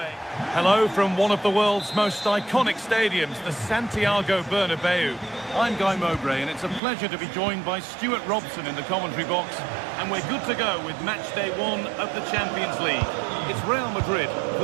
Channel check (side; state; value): left; drops out; at 6.8 s